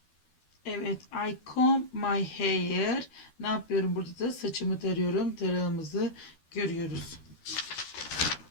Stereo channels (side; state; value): right; late; 12 ms